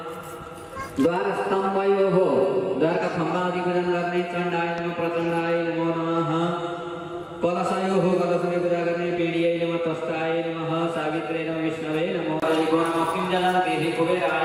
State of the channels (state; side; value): identical; both; correlation 1.00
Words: द्वार स्तंभयो हो द्वार का खंभा आदि पूजन करने चंडाय नमः प्रचंडाय नमो नमः कलशयो हो कलश में पूजा करने पीड़िये नमः तस्ताय नमः सावित्रे नमः विष्णवे नमो हरिको नमः किंजलं देहि